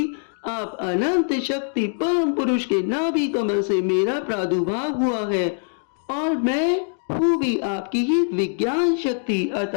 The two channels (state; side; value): silent; right; digital silence